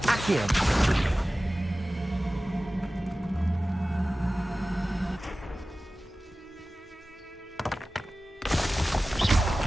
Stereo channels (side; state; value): both; normal; correlation 0.96